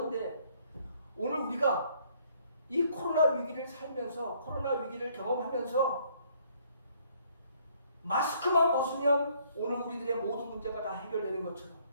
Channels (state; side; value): inverted; both; correlation -0.64